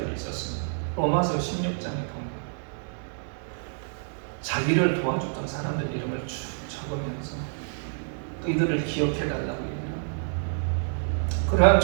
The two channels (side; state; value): left; silent; digital silence